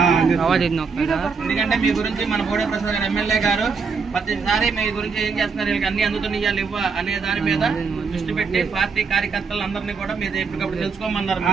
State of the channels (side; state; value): left; quieter; 5.2 dB